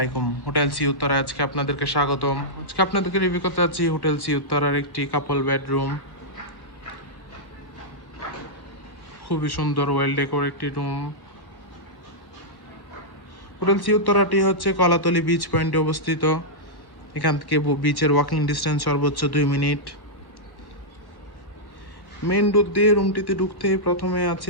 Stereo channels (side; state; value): right; late; 1.1 ms